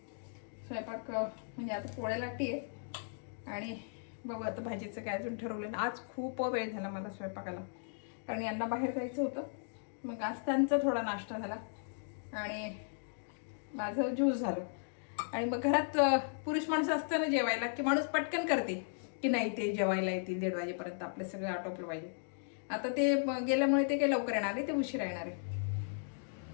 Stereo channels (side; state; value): right; silent; digital silence